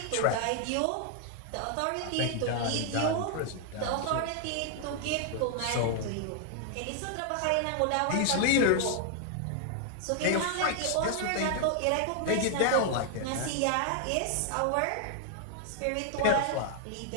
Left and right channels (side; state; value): both; different; correlation 0.00